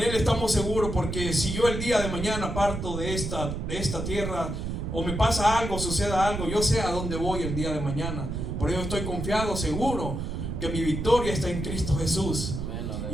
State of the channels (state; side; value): noise; right; rumble, 4 dB below the sound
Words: Él estamos seguros, porque si yo el día de mañana parto de esta tierra, o me pasa algo, suceda algo, yo sé a dónde voy el día de mañana. Por ello estoy confiado, seguro, que mi victoria está en Cristo Jesús.